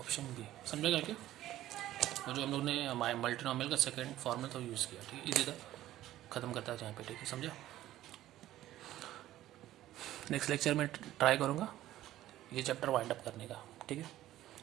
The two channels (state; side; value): quieter; left; 14.2 dB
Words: बी, समझेगा क्या, और जो हम लोग ने मल्टीनोमियल का सेकंड फॉर्मूला तो यूज़ किया। ठीक है, इसी तरह ख़त्म करता है जहाँ पे। ठीक है, समझा, नेक्स्ट लेक्चर में ट्राई करूँगा ये चैप्टर वाइंड अप करने का। ठीक है,